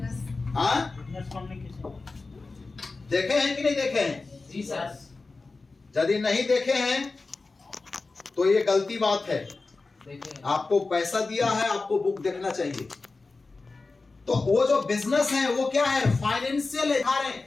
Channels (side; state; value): right; quieter; 3.8 dB